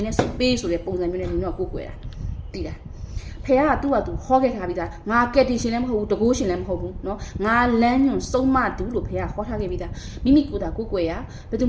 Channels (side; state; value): both; identical; correlation 1.00